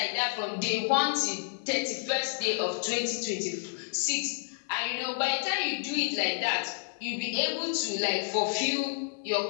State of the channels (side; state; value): right; silent; digital silence